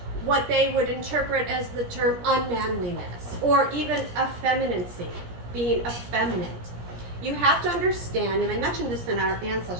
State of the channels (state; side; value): late; left; 17 ms